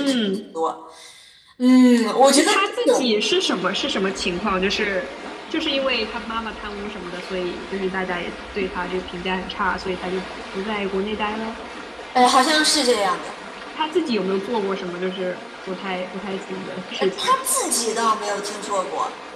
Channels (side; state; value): both; identical; correlation 1.00